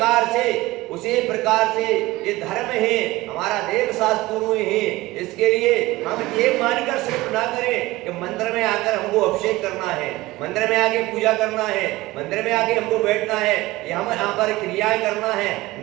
प्रकार से ये धर्म है हमारा, देव शास्त्र है। इसके लिए हम ये मानकर सिर्फ ना करें कि मंदिर में आकर हमको अभिषेक करना है, मंदिर में आके पूजा करना है, मंदिर में आके हमको बैठना है, ये हम यहाँ पर क्रियाएं करना है।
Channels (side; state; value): left; quieter; 19.2 dB